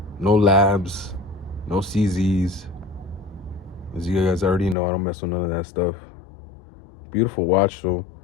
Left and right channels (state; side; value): drops out; right; at 4.8 s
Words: No labs, no CZs. As you guys already know, I don't mess with none of that stuff. Beautiful watch, though.